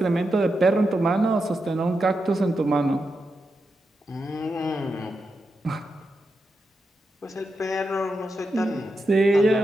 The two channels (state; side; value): normal; both; correlation 0.87